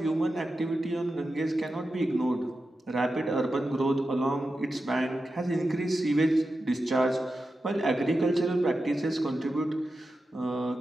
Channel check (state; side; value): normal; both; correlation 0.91